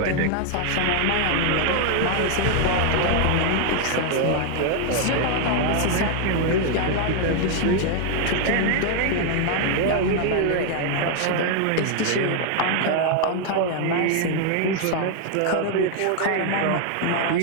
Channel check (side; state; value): both; different; correlation 0.00